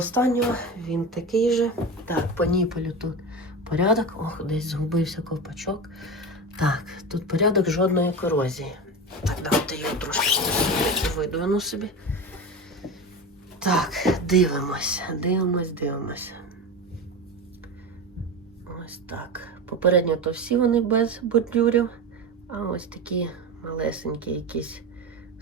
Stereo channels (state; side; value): normal; both; correlation 0.24